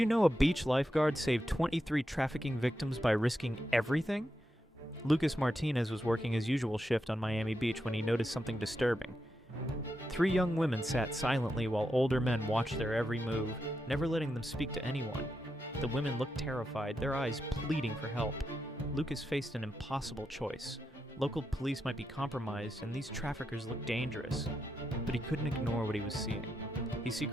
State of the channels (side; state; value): both; normal; correlation 0.85